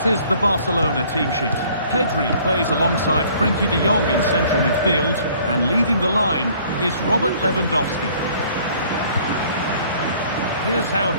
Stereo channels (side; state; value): both; inverted; correlation -0.56